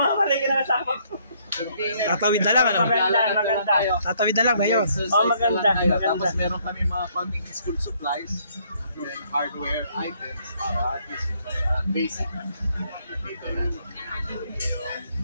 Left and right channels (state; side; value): inverted; both; correlation -0.67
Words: malay na nasama ko. Tatawid na lang, ano? Maganda. Tatawid na lang, Mayor. Oh, maganda. Tapos meron kami mga konting school supplies and hardware items para at least basic. Dito na.